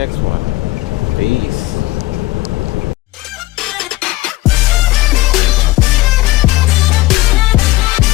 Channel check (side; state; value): right; quieter; 18.5 dB